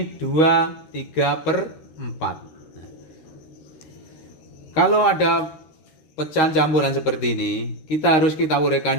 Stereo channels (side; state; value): right; late; 13 ms